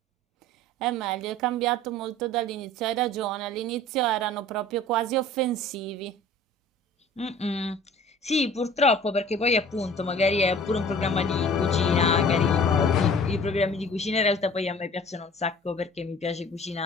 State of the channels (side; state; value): both; normal; correlation 0.47